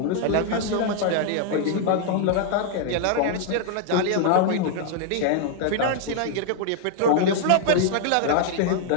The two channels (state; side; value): different; both; correlation 0.00